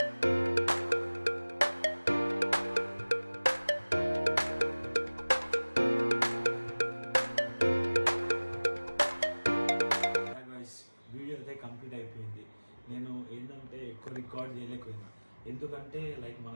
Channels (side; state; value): both; inverted; correlation -1.00